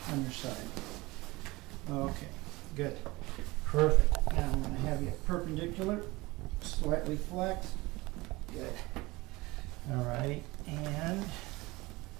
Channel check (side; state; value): left; quieter; 21.9 dB